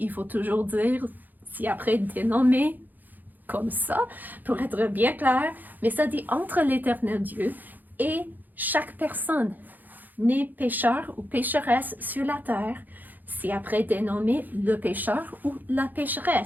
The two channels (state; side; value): late; left; 0.085 ms